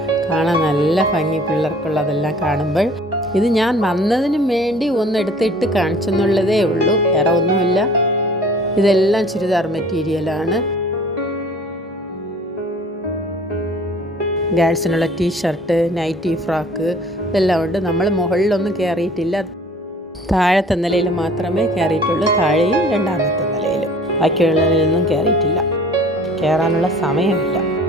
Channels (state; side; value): normal; both; correlation 0.50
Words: കാണാൻ നല്ല ഭംഗി, പിള്ളേർക്കുള്ളതെല്ലാം കാണുമ്പോൾ. ഇത് ഞാൻ വന്നതിനും വേണ്ടി ഒന്നെടുത്തിട്ട് കാണിച്ചെന്നുള്ളതേ ഉള്ളൂ, വേറെ ഒന്നുമില്ല. ഇതെല്ലാം ചുരിദാർ മെറ്റീരിയലാണ്. ഗേൾസിനുള്ള ടീഷർട്ട്, നൈറ്റി, ഫ്രോക്ക് ഇതെല്ലാം ഉണ്ട്. നമ്മൾ മുകളിലൊന്നും കയറിയിട്ടില്ല, താഴത്തെ നിലയിൽ മാത്രമേ കയറിയിട്ടുള്ളൂ. താഴെയും രണ്ടാമത്തെ നിലയിലും, ബാക്കിയുള്ളതിലൊന്നും കയറിയിട്ടില്ല. കയറാനുള്ള സമയമില്ല.